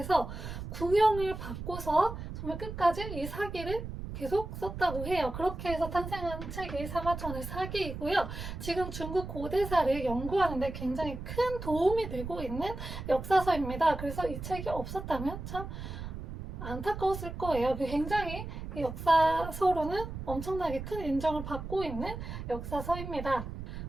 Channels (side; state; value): right; noise; rumble, 8 dB below the sound